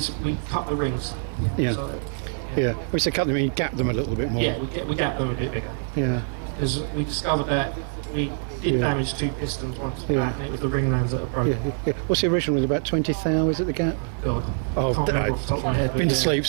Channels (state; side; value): silent; left; 57 dB below the other